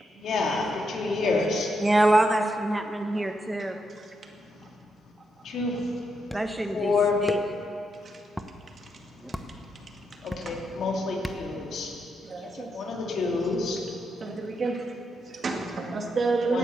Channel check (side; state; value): both; normal; correlation 0.81